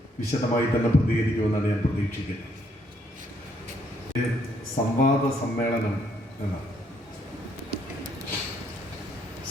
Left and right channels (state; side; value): normal; both; correlation 0.70